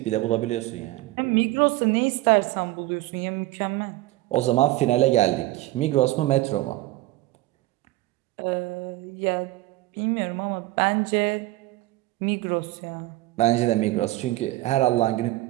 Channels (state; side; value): quieter; left; 17.8 dB